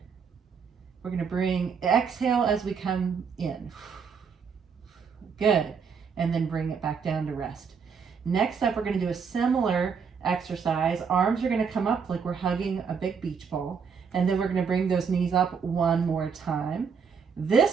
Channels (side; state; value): left; quieter; 6.1 dB